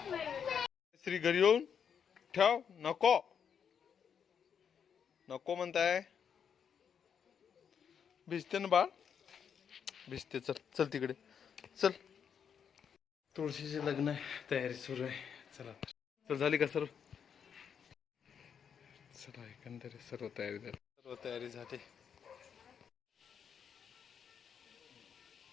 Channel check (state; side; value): quieter; right; 7.5 dB